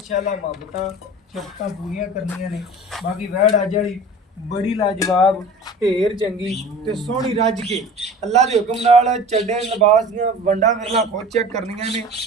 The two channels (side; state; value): both; normal; correlation 0.39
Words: ਮੁਹੱਬਤਾਂ ਸ਼ਫਕਾਂ ਪੂਰੀਆਂ ਕਰਨੀਆਂ ਨੇ। ਬਾਕੀ ਵੈੜ ਅੱਜ ਵਾਲੀ ਬੜੀ ਲਾਜਵਾਬ, ਢੇਰ ਚੰਗੀ ਤੇ ਸੋਹਣੀ ਰੱਜ ਕੇ ਅੱਲਾ ਦੇ ਹੁਕਮ ਨਾਲ ਚੱਡੇ ਲਿਬਾਸ ਦੀਆਂ ਵੰਡਾਂ ਵਿਰਲਾ ਖੁਦ ਚੈੱਕ ਕਰਨੀਆਂ ਨੇ।